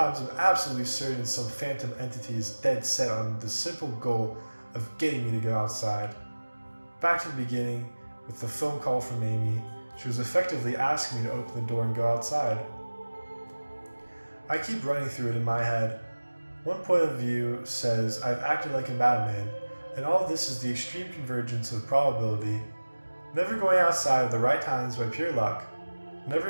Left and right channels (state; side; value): inverted; both; correlation -1.00